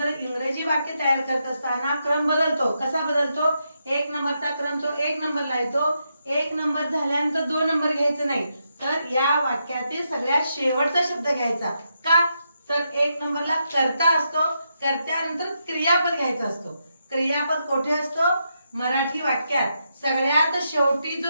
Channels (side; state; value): both; inverted; correlation -0.82